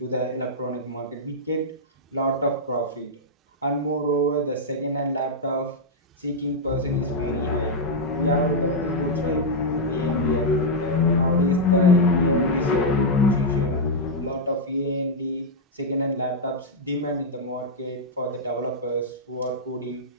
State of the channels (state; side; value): normal; both; correlation -0.05